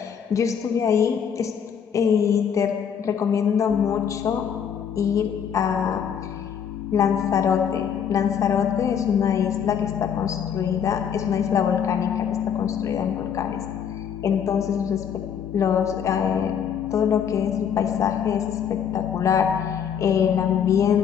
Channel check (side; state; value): right; quieter; 7.9 dB